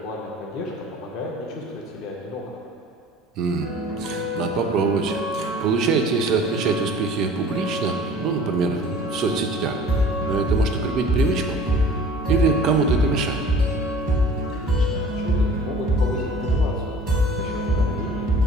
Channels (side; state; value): both; normal; correlation 0.45